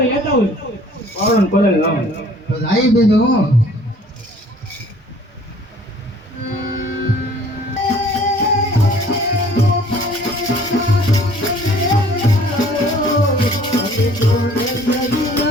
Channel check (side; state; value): both; normal; correlation 0.54